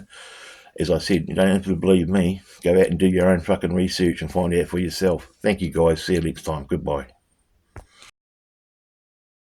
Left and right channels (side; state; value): both; identical; correlation 1.00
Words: As I said, you don't have to believe me. Go out and do your own fucking research and find out for yourself. Thank you, guys. See you next time. Goodbye.